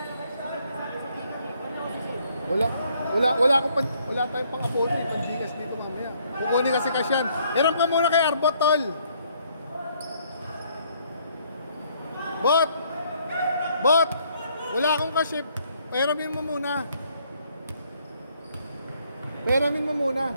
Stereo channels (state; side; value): inverted; both; correlation -0.66